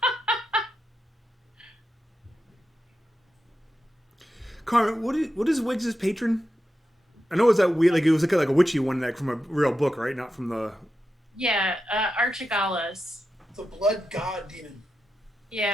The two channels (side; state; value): both; normal; correlation 0.89